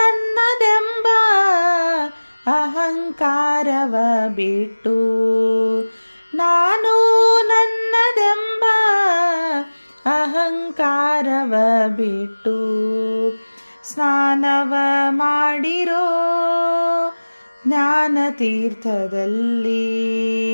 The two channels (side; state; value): both; inverted; correlation -1.00